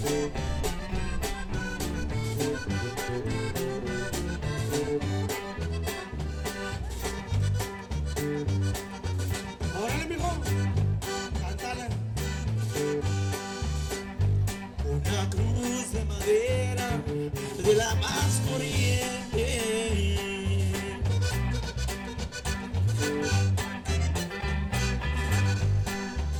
Órale, mijo, cántale. Una cruz de madera de la más corriente.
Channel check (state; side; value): identical; both; correlation 1.00